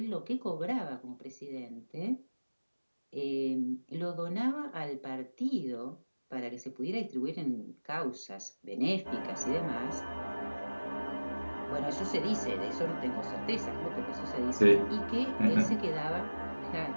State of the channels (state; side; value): inverted; both; correlation -1.00